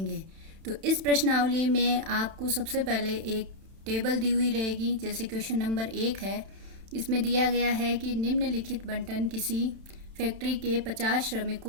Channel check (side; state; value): left; late; 31 ms